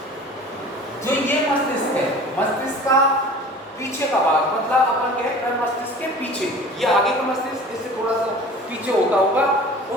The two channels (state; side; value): normal; both; correlation 0.42